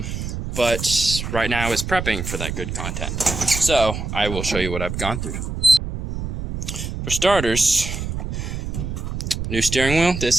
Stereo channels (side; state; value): right; noise; rumble, 5 dB below the sound